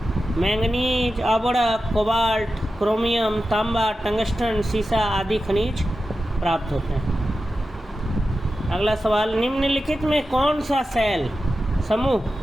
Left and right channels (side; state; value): both; normal; correlation 0.92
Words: मैंगनीज, अबड़क, कोबाल्ट, क्रोमियम, तांबा, टंगस्टन, सीसा आदि खनिज प्राप्त होते हैं। अगला सवाल, निम्नलिखित में कौन सा शैल समूह